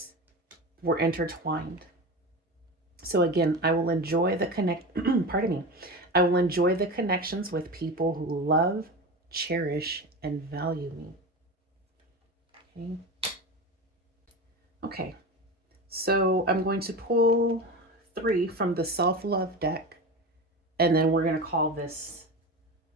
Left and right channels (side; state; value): both; normal; correlation 0.26